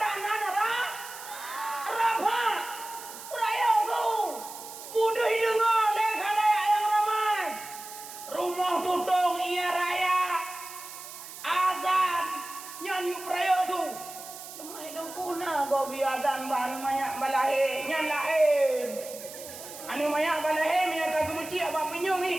nana Rabha. Peraya tu. Mudah dengar lekha-lekha yang ramai. Rumah tutung ia raya. Azan. Nyanyi peraya tu. Cuma itu kuna kau biarkan bahan banyak balahe. Nyan lahir. Anu banyak balahe. Minyak tak kemuci apa pinyong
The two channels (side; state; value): right; noise; hiss, 13 dB below the sound